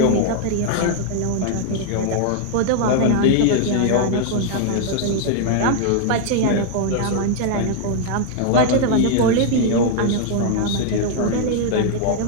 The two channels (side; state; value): both; different; correlation 0.00